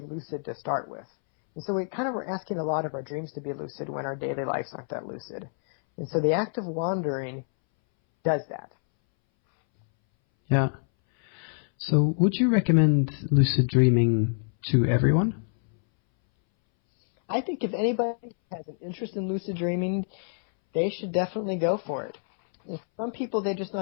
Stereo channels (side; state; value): right; silent; 60 dB below the other